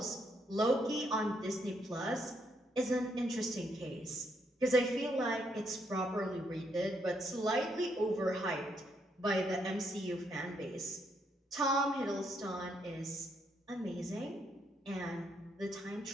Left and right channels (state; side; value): normal; both; correlation 0.75